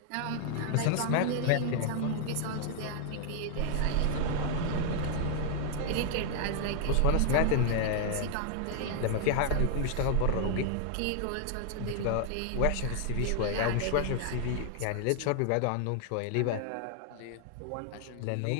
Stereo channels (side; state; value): both; different; correlation 0.00